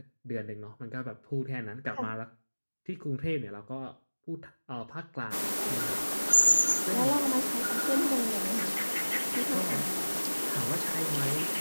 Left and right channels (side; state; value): both; inverted; correlation -1.00